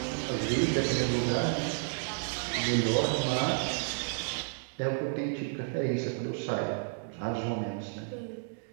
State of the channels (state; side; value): silent; left; digital silence